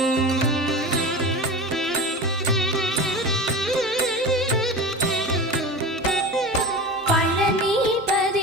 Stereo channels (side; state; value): both; normal; correlation 0.30